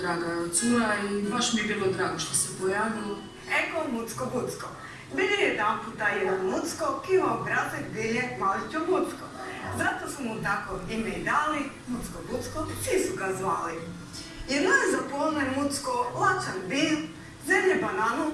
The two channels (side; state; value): both; identical; correlation 1.00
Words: cura i baš mi je bilo drago što se pojavilo. Eko Mucko-Bucko. Bili je jedan puta jedan Mucko, ki ima obrazek bilje maličo Bucko. Zato su mu tako ime i dali, Mucko-Bucko, svi su ga zvali. Jedno je zapolno Mucko lačan bil, zemlje bananu